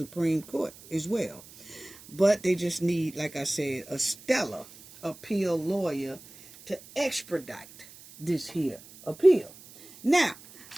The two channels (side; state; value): right; noise; hiss, 20 dB below the sound